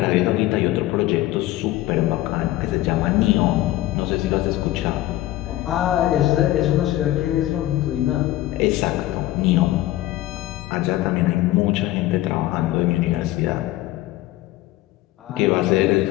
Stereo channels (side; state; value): right; quieter; 15.8 dB